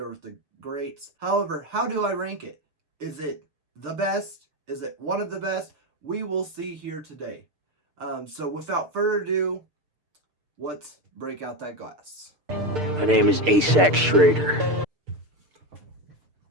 with the greats. However, how do I rank it? Is it the best? Is it one of the best? We will see here today. So without further ado, let's break out that glass. My name is Asac Schrader.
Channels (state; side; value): late; left; 6.7 ms